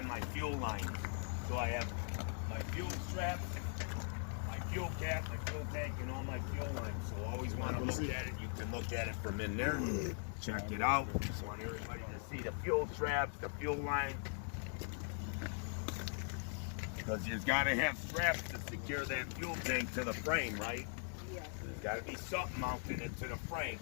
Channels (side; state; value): right; silent; 51 dB below the other